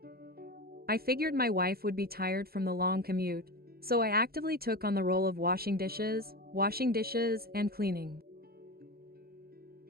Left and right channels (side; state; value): left; late; 0.44 ms